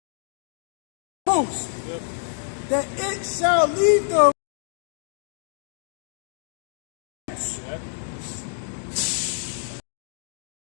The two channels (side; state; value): right; silent; digital silence